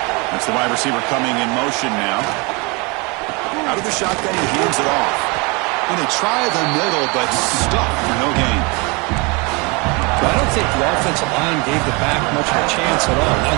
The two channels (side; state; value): left; quieter; 28.7 dB